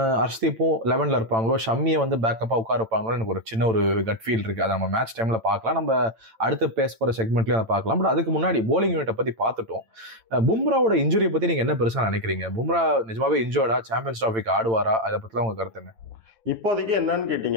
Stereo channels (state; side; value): late; left; 8.9 ms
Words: ஹர்ஷ்தீப்பும் 11ல இருப்பாங்களோ, ஷம்மியை வந்து பேக்கப்பா உட்கார இருப்பாங்களோ, எனக்கு ஒரு சின்ன ஒரு கட் ஃபீல் இருக்கு. அதை நம்ம மேட்ச் டைம்ல பார்க்கலாம், நம்ம அடுத்து பேச போற செக்மெண்ட்லயும் அதை பார்க்கலாம். பட் அதுக்கு முன்னாடி போலிங் யூனிட்டை பத்தி பார்த்துட்டோம். பும்ராவோட இன்ஜுரியை பத்தி நீங்க என்ன பெருசா நினைக்கிறீங்க? பும்ரா நிஜமாவே இன்ஜோர்டா? சாம்பியன்ஸ் டிராஃபிக்கு ஆடுவாரா? அதை பத்திலாம் உங்க கருத்து என்ன? இப்போதைக்கு என்னன்னு